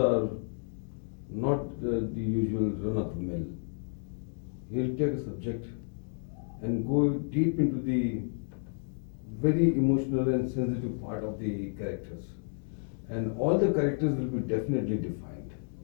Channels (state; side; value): silent; right; 57 dB below the other